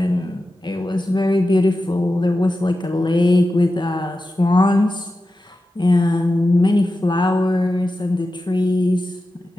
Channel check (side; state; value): both; normal; correlation 0.92